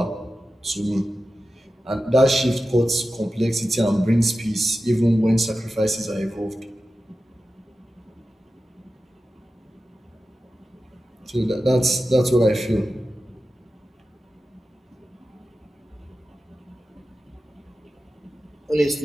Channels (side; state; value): both; normal; correlation 0.93